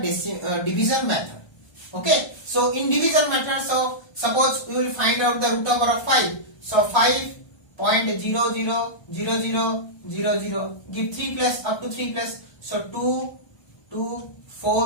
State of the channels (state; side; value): late; right; 1.3 ms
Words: division method. Okay. So in division method, so suppose we will find out the root over of 5. So 5.000000, give 3 plus, up to 3 plus. So 2, 2,